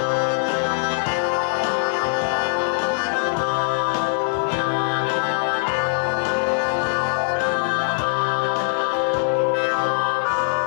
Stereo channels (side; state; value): right; silent; 64 dB below the other